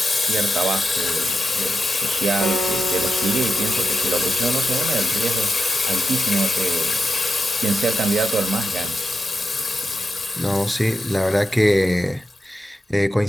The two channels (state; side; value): normal; both; correlation 0.89